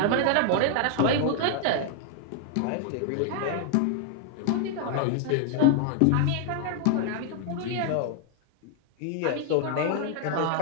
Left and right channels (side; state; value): both; different; correlation 0.00